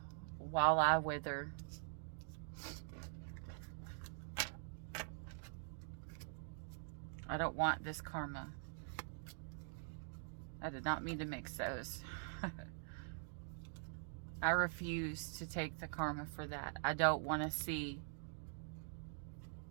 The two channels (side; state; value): left; silent; digital silence